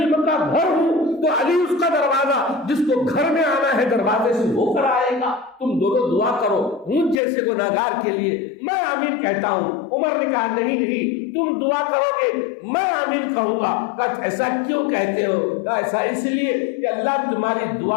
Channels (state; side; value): drops out; right; at 7.2 s